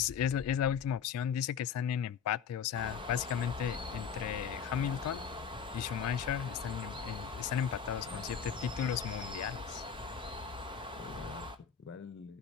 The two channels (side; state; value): right; quieter; 7.2 dB